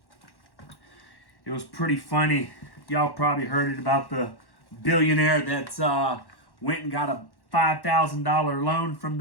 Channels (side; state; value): right; late; 1.1 ms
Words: It was pretty funny. Y'all probably heard it about the billionaire that went and got a $5,000 loan from